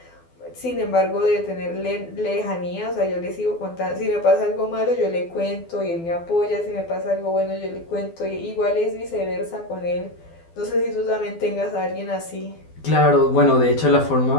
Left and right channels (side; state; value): right; late; 12 ms